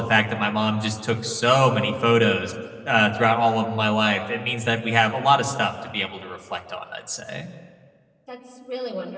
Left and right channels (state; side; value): identical; both; correlation 1.00